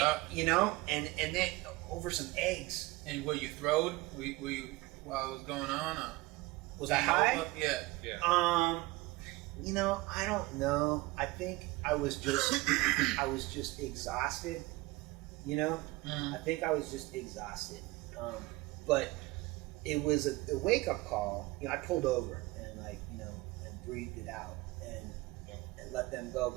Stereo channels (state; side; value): quieter; left; 21.0 dB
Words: you know, and then over some eggs. And were you throwed? Were you while it was going on? Or? Was I high? Yeah. You know, I don't know. I think I was just exhausted. You know, I think I was just exhausted. But it was a wake up call. You know, I pulled over and and breathed it out and let them go.